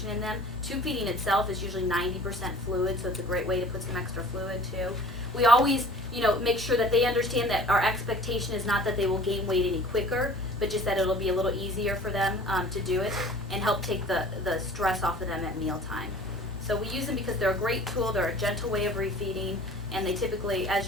in them. Tube feeding itself is usually 90% fluid, so it's a great way to put some extra fluid too. We always, make sure that they understand that our expectation is not that they will gain weight any quicker, but just that it'll be a little easier for them to do it and help take the stress off of them at mealtime. So we use them because they're a great tool, they're a gentle way of refeeding, and they typically, as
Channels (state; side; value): normal; both; correlation 0.46